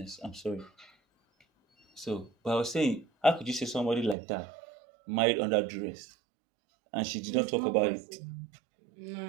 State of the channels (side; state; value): left; drops out; at 4.2 s